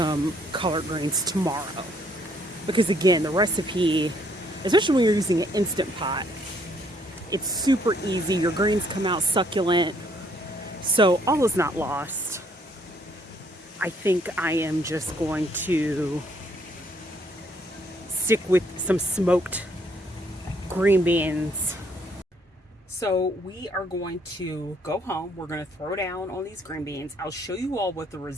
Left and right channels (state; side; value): normal; both; correlation 0.66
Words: collard greens tomorrow. Because again, the recipe, especially when you're using an Instant Pot, it's super easy. Your greens come out succulent. So all is not lost. I think I am just going to stick with some smoked green beans. So we are going to go home. We're going to throw down on these green beans. I'll show you all what the